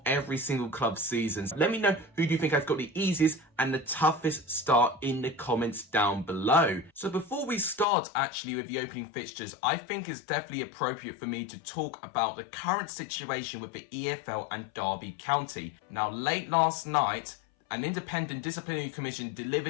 every single club season. Let me know who do you think has got the easiest and the toughest start in the comments down below. So before we start actually with the opening fixtures, I think it's definitely appropriate for me to talk about the current situation with the EFL and Derby County. Now, late last night, an independent disciplinary commission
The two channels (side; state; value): right; drops out; at 7.9 s